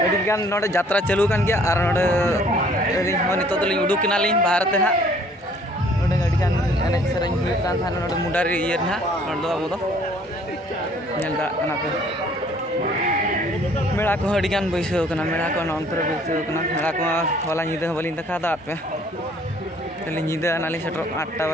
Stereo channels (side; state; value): both; normal; correlation 0.58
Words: अडी गान नोडे यात्रा चालू कान गया और नोडे अडी हो नितो तो लिंग उडुक किना लिंग भारत ते ना नोडे अडी गान एने सेरेंग हुई कान थान नोडे मुडारी ये ना नोडे अब दो नेल दड़ा कना पे मेड़ा को अडी गान बैसो कना मेड़ा को नंतर बैसो कना मेड़ा को होला निदे बलिन देखा दा पे तले निदे नाली सेटर 8टा